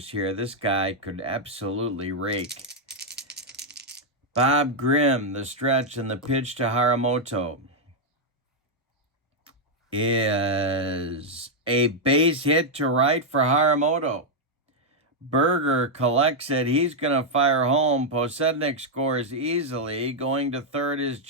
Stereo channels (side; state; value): both; normal; correlation -0.02